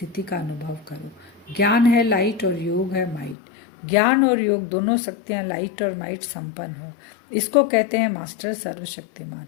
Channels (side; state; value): right; drops out; at 3.4 s